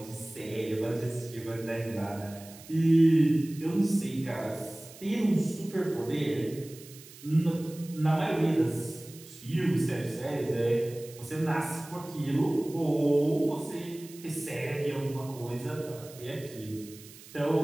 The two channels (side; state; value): right; noise; hiss, 19 dB below the sound